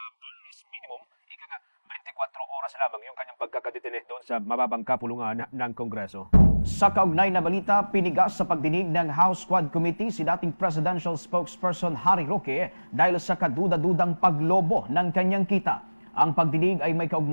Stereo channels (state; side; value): inverted; both; correlation -1.00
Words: barest minimum 24 oras lamang yung kanyang pagkakadetine doon sa mababang kapulungan ng Kongreso. Sa kaugnay na balita, pinigas sa pagdinig ng House Quad Committee si dating presidential spokesperson Harry Roque dahil sa kaduda-dudang paglobo ng kanyang kita. Ang pagdinig ay may